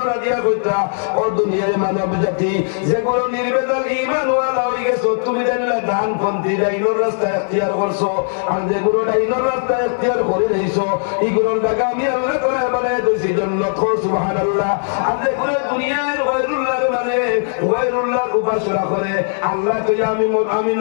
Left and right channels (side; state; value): right; silent; digital silence